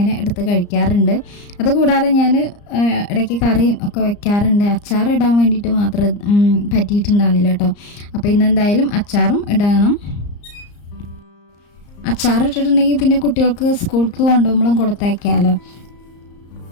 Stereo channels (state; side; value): late; right; 34 ms